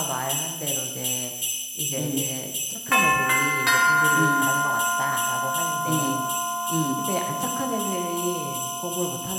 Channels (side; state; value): both; identical; correlation 1.00